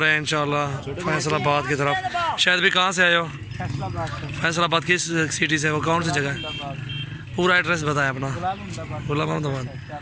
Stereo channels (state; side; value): identical; both; correlation 1.00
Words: रहे हैं इंशाल्लाह फैसलाबाद की तरफ। शायद भी कहाँ से आए हो? फैसलाबाद किस सिटी से? वो कौन सी जगह है? पूरा एड्रेस बताएं अपना। गुलाम अहमदाबाद।